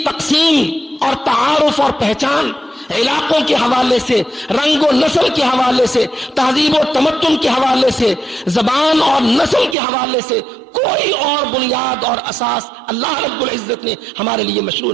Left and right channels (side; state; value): left; drops out; at 9.8 s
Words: تقسیم اور تعارف اور پہچان علاقوں کے حوالے سے، رنگ و نسل کے حوالے سے، تہذیب و تمدن کے حوالے سے، زبان اور نسل کے حوالے سے کوئی اور بنیاد اور اساس اللہ رب العزت نے ہمارے لیے مشروع